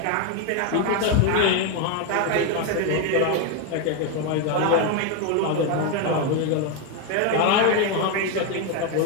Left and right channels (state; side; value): different; both; correlation 0.01